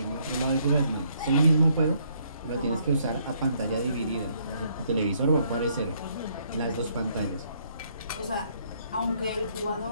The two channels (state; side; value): inverted; both; correlation -0.69